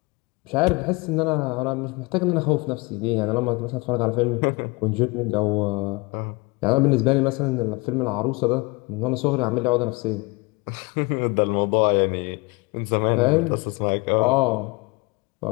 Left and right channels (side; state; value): right; quieter; 26.5 dB